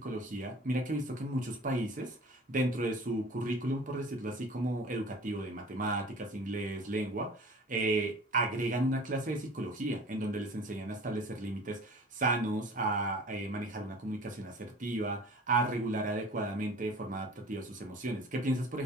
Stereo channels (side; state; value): both; normal; correlation 0.44